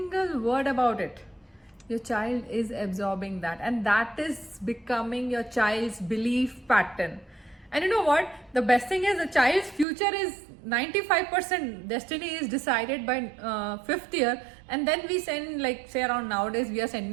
word about it, your child is absorbing that, and that is becoming your child's belief pattern. And you know what? The best thing is, the child's future is 95% destiny is decided by 5th year, and then we send, say around nowadays we are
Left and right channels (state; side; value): drops out; left; at 9.9 s